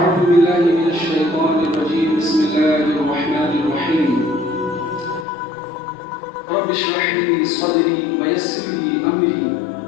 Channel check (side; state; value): right; drops out; at 5.2 s